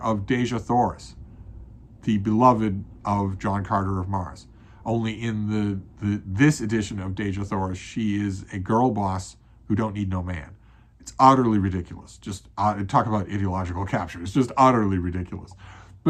of Deja Thoris, the beloved of John Carter of Mars. Only in this edition of Deja Thoris, she is a girl boss who don't need no man. It's utterly ridiculous. Just talk about ideological capture. It's just utterly ridiculous.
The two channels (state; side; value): identical; both; correlation 1.00